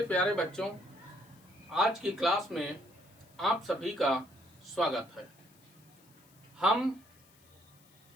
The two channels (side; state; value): left; noise; hiss, 28 dB below the sound